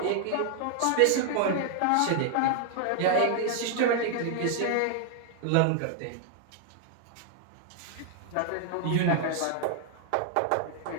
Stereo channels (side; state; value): both; different; correlation 0.00